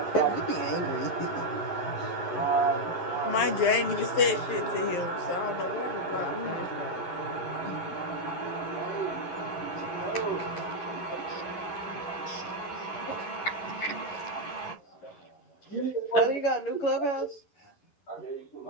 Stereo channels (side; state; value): right; late; 12 ms